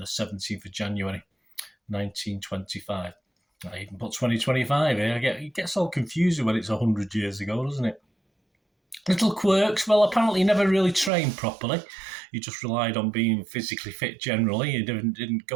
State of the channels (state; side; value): drops out; left; at 11.1 s